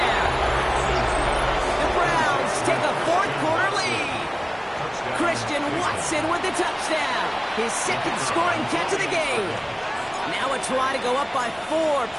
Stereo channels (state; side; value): identical; both; correlation 1.00